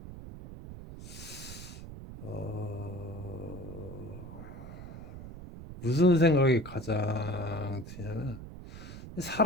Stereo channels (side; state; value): right; noise; rumble, 12 dB below the sound